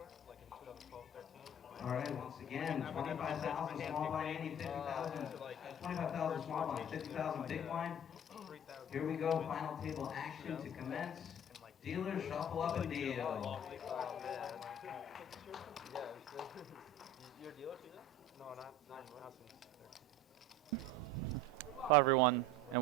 like in 2012, 13. All right, once again, 25,000 small blind ante, 50,000, 25,000 small blind, 50,000 big blind. Here we go, final table action to commence. Dealers shuffle up and deal. You're a dealer too? No, not Hello everyone, and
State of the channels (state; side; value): normal; both; correlation 0.40